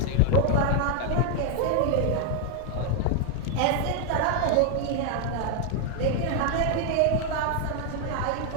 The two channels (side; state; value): both; different; correlation 0.00